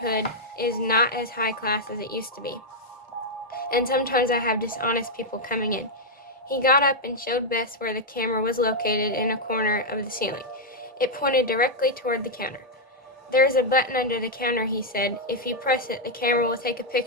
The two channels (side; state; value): both; normal; correlation -0.02